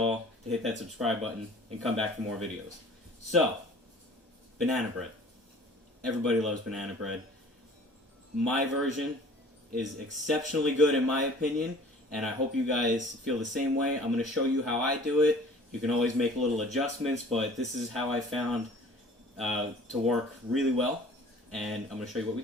to hit that subscribe button and come back for more videos. So, banana bread. Everybody loves banana bread. My version is exceptionally good in my opinion, and I hope you guys feel the same way. I'm going to show you how I do it. You can always make little adjustments, but this is how I found to work really well, and I'm going to show you what we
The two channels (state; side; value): normal; both; correlation 0.48